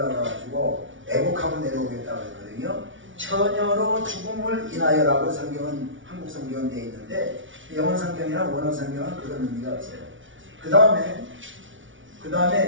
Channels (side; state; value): left; late; 0.56 ms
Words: 애국하고 내려오겠다고 했거든요. 처녀로 죽음을 인하여라고 성경은 한국 성경은 되어 있는데 영어 성경이나 원어 성경은 그런 의미가 없어요. 그